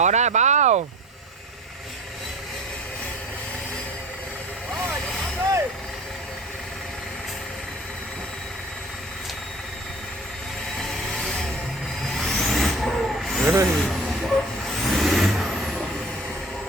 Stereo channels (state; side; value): normal; both; correlation 0.42